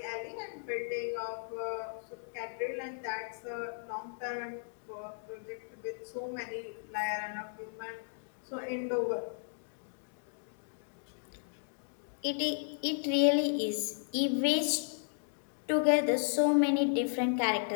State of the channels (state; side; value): silent; right; digital silence